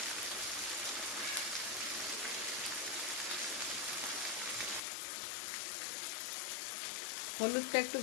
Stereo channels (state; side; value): drops out; right; at 4.8 s